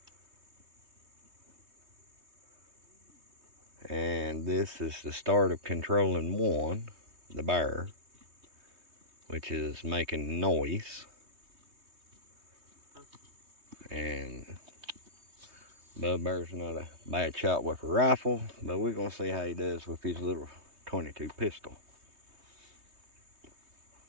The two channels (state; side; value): late; left; 3.2 ms